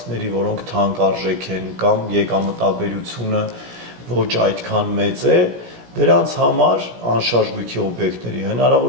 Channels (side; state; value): left; late; 17 ms